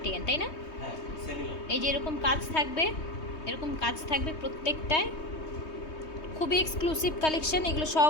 তাই না? হ্যাঁ, সেমি লং। এই যে এরকম কাজ থাকবে, এরকম কাজ থাকবে প্রত্যেকটায়, খুবই এক্সক্লুসিভ কালেকশন। এগুলো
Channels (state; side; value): late; right; 3.2 ms